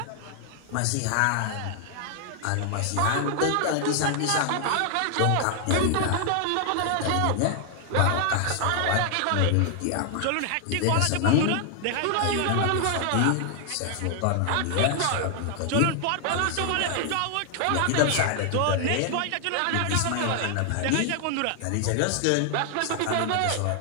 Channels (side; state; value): both; different; correlation 0.00